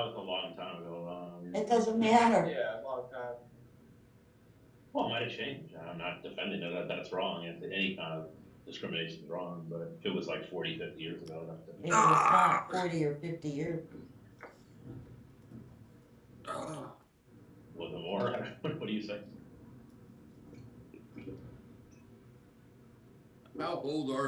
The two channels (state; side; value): identical; both; correlation 1.00